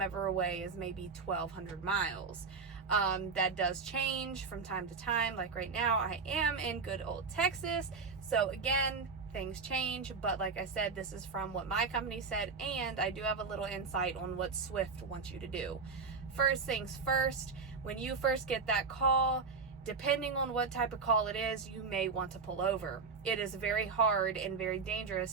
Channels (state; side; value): quieter; left; 4.8 dB